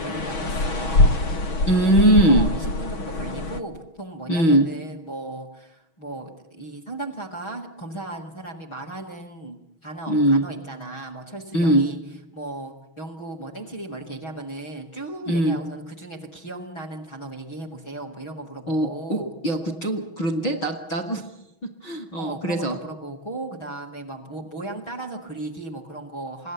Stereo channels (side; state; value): right; late; 6.2 ms